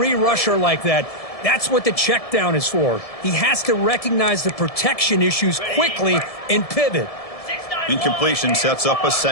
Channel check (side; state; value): right; late; 1.7 ms